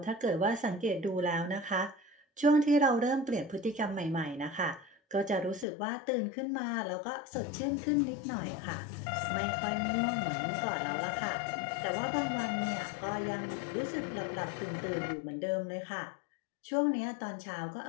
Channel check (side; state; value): right; drops out; at 5.7 s